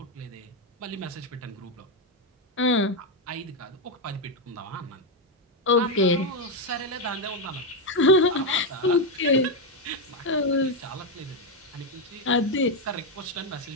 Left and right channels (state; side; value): normal; both; correlation 0.05